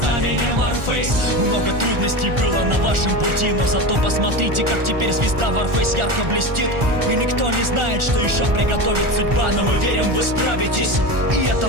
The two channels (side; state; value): left; late; 1.4 ms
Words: Warface. Много трудностей было на вашем пути, но зато посмотрите, как теперь звезда Warface ярко блестит. И никто не знает, что еще приготовит судьба, но мы верим, вы справитесь, и это